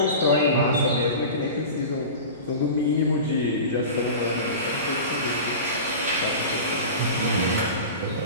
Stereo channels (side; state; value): both; inverted; correlation -0.32